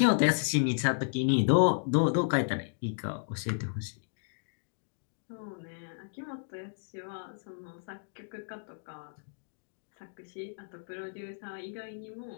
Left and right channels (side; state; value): right; silent; digital silence